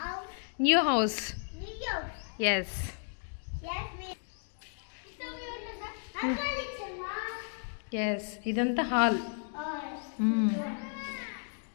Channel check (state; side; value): silent; right; 55 dB below the other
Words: న్యూ హౌస్. ఎస్, ఎస్, ఇదంతా హాల్.